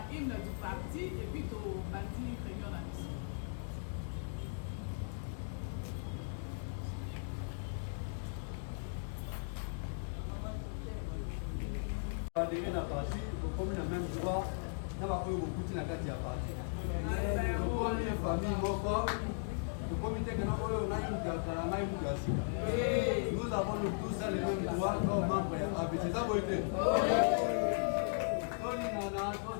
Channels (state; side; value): silent; right; digital silence